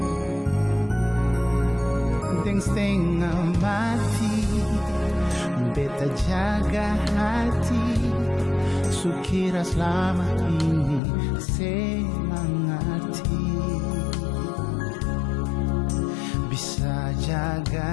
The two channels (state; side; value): drops out; right; at 11.0 s